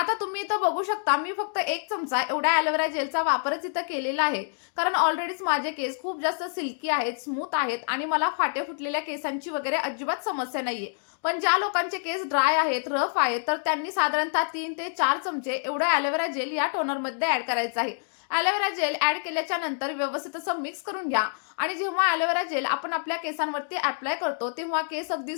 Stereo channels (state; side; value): silent; right; digital silence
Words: तुम्ही इथं बघू शकता, मी फक्त 1 चमचा एवढ्या ॲलोवेरा जेलचा वापरच इथं केलेला आहे. कारण ऑलरेडीच माझे केस खूप जास्त सिल्की आहेत, स्मूथ आहेत आणि मला फाटे फुटलेल्या केसांची वगैरे अजिबात समस्या नाहीये. पण ज्या लोकांचे केस ड्राय आहेत, रफ आहेत, तर त्यांनी साधारणतः 3 ते 4 चमचे एवढं ॲलोवेरा जेल या टोनरमध्ये ॲड करायचं आहे. ॲलोवेरा जेल ॲड केल्याच्या नंतर व्यवस्थित असं मिक्स करून घ्या आणि जेव्हा ॲलोवेरा जेल आपण आपल्या केसांवरती अप्लाय करतो, तेव्हा केस अगदी